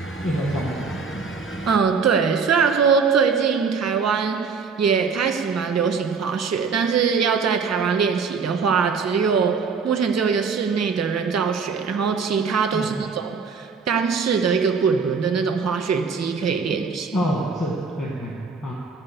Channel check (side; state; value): left; quieter; 5.3 dB